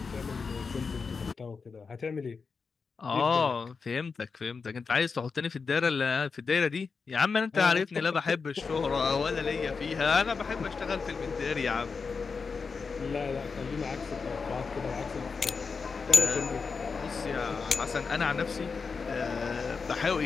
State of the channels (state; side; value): quieter; right; 5.0 dB